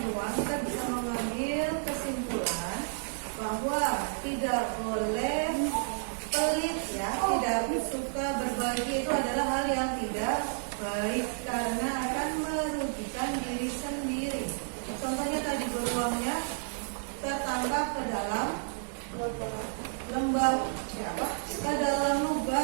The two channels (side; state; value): left; silent; 57 dB below the other